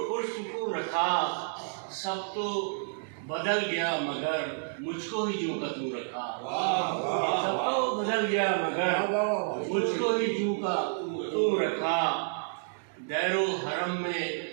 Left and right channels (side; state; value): left; silent; digital silence